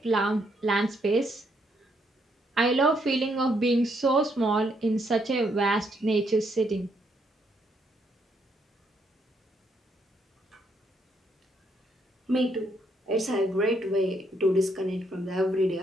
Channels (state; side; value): normal; both; correlation 0.74